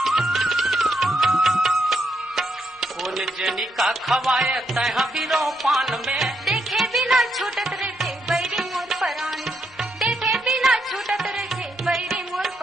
जनी का खवाए तह बिरो पान में देखे बिना छूटत रहते बैरी मोर परानी देखे बिना छूटत रहते बैरी मोर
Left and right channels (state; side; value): normal; both; correlation 0.79